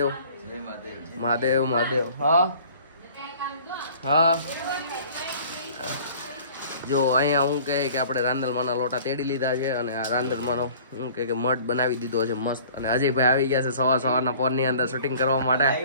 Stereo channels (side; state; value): both; inverted; correlation -0.49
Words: મહાદેવ મહાદેવ. હા હા જો અહીંયા હું કહે કે આપણે રાંદલમાંના લોટા તેડી લીધા છે અને આ રાંદલમાંનો હું કહે કે મઠ બનાવી દીધો છે મસ્ત. અને અજયભાઈ આવી ગયા છે સવારના પોરની અંદર શૂટિંગ કરવા માટે.